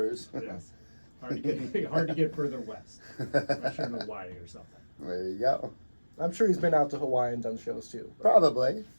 Yes. Hard to get further west. Unless you're in Hawaii or something. There you go. I'm sure he's been out to Hawaii and done shows too. But, Probably.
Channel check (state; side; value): inverted; both; correlation -1.00